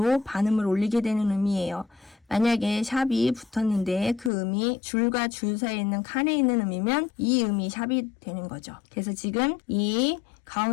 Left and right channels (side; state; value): right; drops out; at 4.3 s